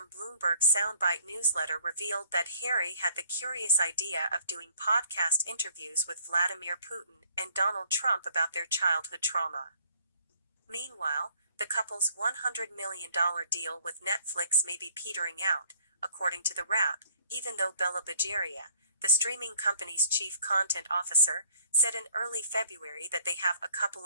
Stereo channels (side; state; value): both; inverted; correlation -0.61